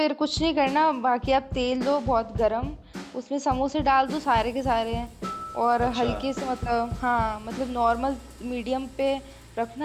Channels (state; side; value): identical; both; correlation 1.00